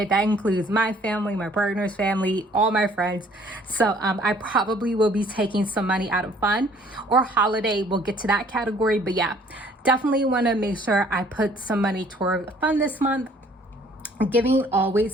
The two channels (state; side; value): normal; both; correlation 0.58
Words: That includes my family, my partner's family, all my friends. So I probably will be taking some money out of fun or holiday. We'll get to that category. But yeah, definitely want to make sure I put some money toward fun this month. Giving